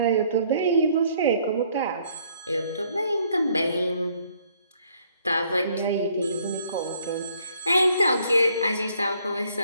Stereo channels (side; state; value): both; inverted; correlation -0.64